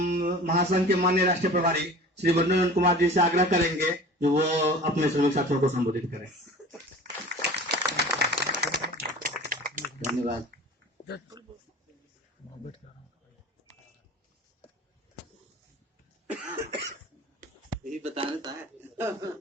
महासंघ के माननीय राष्ट्रीय प्रभारी श्री वरुण कुमार जी से आग्रह करेंगे कि वो अपने श्रमिक साथियों को संबोधित करें। धन्यवाद। यही बताना था।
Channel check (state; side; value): normal; both; correlation 0.40